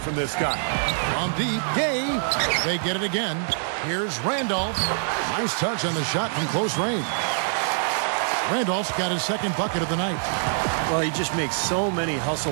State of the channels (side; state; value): left; silent; 62 dB below the other